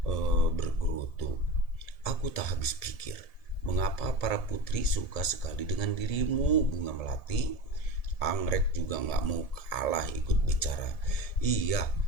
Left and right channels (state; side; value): late; right; 1.7 ms